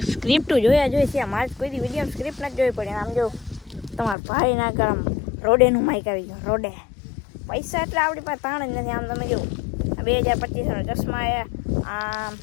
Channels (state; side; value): drops out; right; at 4.2 s